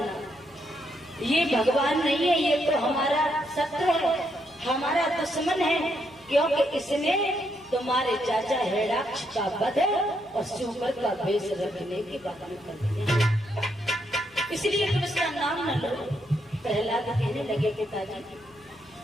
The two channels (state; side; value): noise; left; hum, 29 dB below the sound